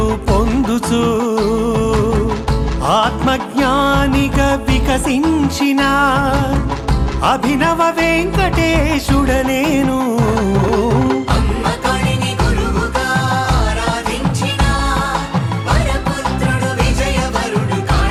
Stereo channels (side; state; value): both; identical; correlation 1.00